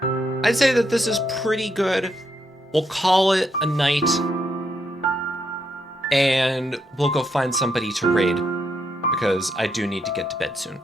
I'd say that this is pretty good. We'll call it a night, and we'll go find somebody to raid, because I do need to get to bed soon.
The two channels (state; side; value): normal; both; correlation 0.78